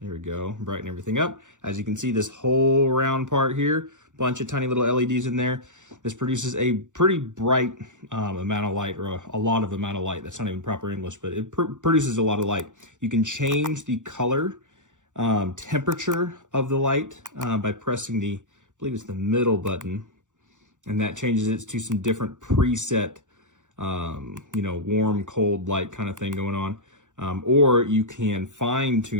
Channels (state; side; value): late; left; 0.86 ms